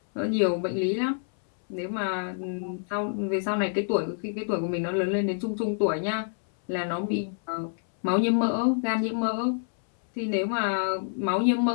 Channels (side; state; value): right; silent; 60 dB below the other